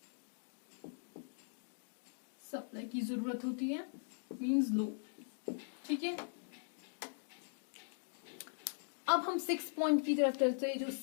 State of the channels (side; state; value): right; silent; digital silence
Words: सप्लाई की जरूरत होती है, मींस लो। ठीक है, अब हम 6 पॉइंट की तरफ चलते हैं, जो